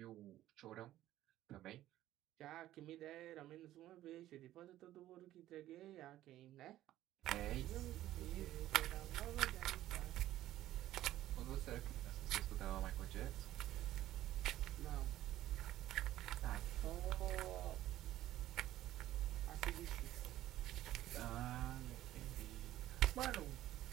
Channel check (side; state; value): left; quieter; 14.0 dB